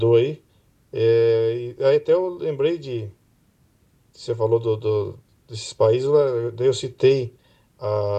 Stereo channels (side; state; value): both; identical; correlation 1.00